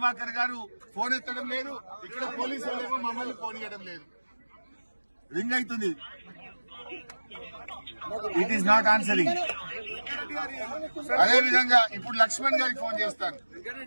గారు ఫోన్ ఎత్తడం లేదు, ఇక్కడ పోలీసు వాళ్ళేమో మమ్మల్ని ఫోన్ ఇవ్వడం లేదు. రింగ్ అవుతుంది, ఇట్ ఈస్ నాట్ ఆన్సరింగ్. అదే విధంగా ఇప్పుడు లక్ష్మణ్ గారికి ఫోన్ చేస్తాను,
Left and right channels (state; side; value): inverted; both; correlation -1.00